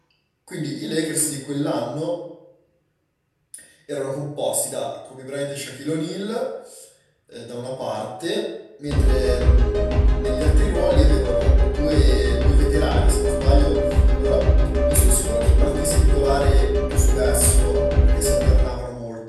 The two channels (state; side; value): identical; both; correlation 1.00